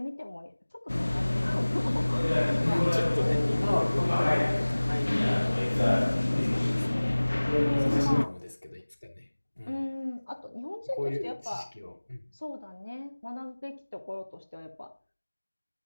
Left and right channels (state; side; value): inverted; both; correlation -1.00